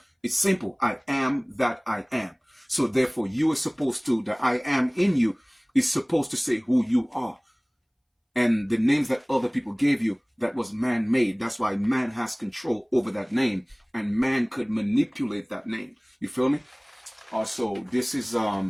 it's simple. I am that I am. So therefore, you are supposed to, the I am in you is supposed to say who you are. And the names that other people gave you, that was man-made. That's why man has control over that name. And man could manipulate that name. You feel me? Also, this is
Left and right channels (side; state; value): both; identical; correlation 1.00